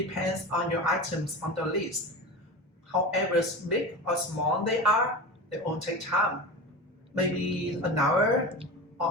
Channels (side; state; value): both; normal; correlation 0.28